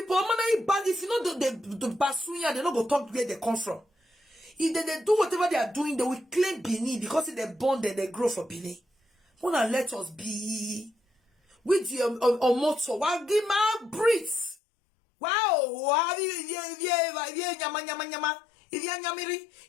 if you know the Basunya, they don't go talk where they come from. If they do whatever they are doing, they will claim Bini because if they born, then they grow for Bini. Wanna let us be with the motto. Wow, give my breathe. Wow, nyama. If ye nyamiri,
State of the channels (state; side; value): drops out; right; at 14.6 s